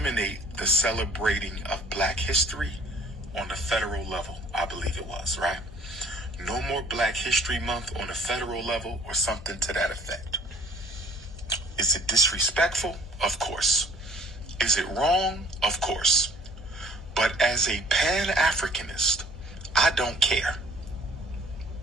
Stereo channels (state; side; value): normal; both; correlation 0.54